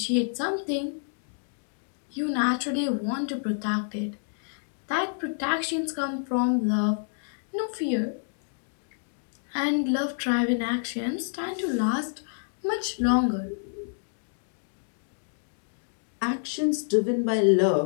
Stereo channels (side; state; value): right; silent; digital silence